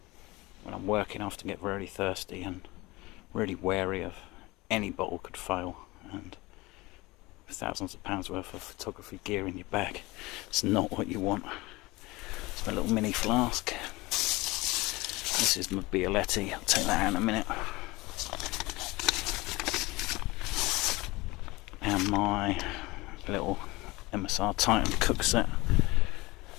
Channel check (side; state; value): right; quieter; 22.1 dB